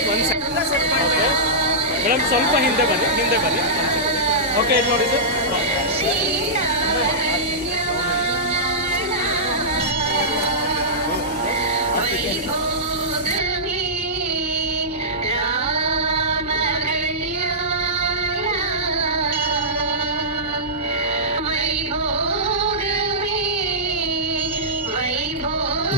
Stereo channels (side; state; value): both; normal; correlation -0.15